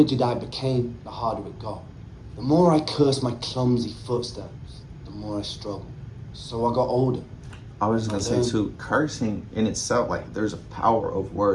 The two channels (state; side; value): identical; both; correlation 1.00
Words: I became, the harder it got. The more I cursed my clumsy footsteps, the more I struggled. So I got older. I was just gonna say too, cursing in itself, like there's a power of